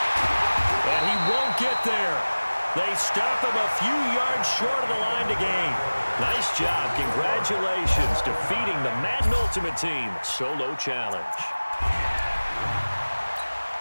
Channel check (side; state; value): both; inverted; correlation -1.00